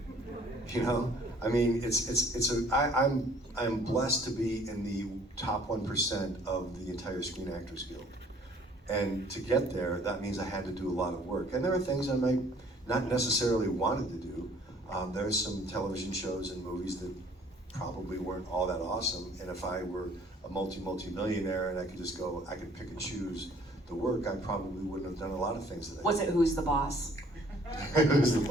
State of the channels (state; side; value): normal; both; correlation 0.57